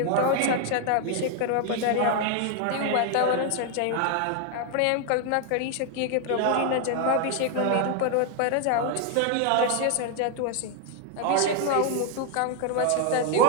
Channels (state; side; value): different; both; correlation 0.00